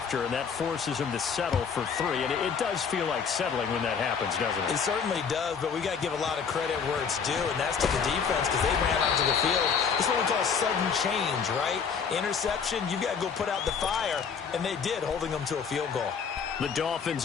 and that forces them to settle for 3. And it does feel like settling when that happens, doesn't it? It certainly does, but we got to give a lot of credit where it's due, and that's to the defense, because they ran onto the field. It's what we call sudden change, right? Interception, you've got to go put out the fire, and they did, holding them to a field goal. The Dolphins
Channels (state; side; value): quieter; right; 6.3 dB